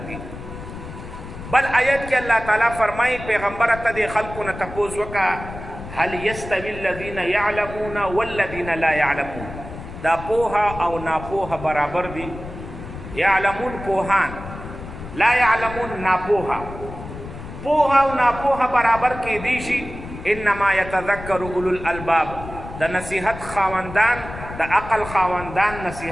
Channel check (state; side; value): noise; left; rumble, 12 dB below the sound